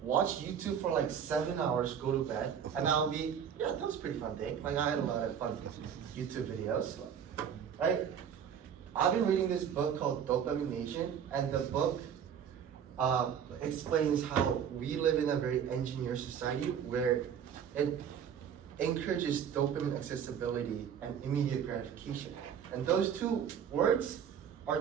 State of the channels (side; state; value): left; quieter; 8.2 dB